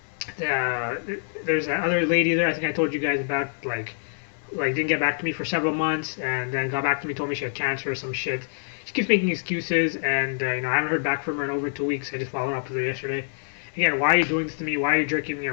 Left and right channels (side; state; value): right; silent; 61 dB below the other